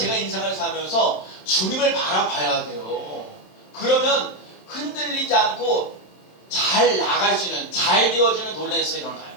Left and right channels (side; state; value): right; late; 27 ms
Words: 인생을 살면서 주님을 바라봐야 돼요. 그러면 흔들리지 않고 잘 나갈 수 있는 잘 되어지는 논란에서 일어나요.